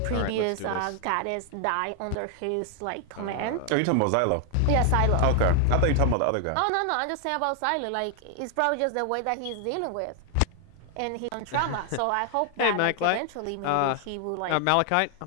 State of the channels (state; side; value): different; both; correlation 0.00